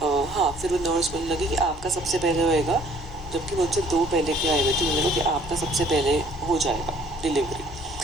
फिर वो नर्स बोलने लगी कि आपका सबसे पहले होएगा, जबकि मुझसे 2 पहले के आए हुए थे। उन्होंने कहा कि आपका सबसे पहले हो जाएगा डिलीवरी।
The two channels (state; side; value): normal; both; correlation 0.58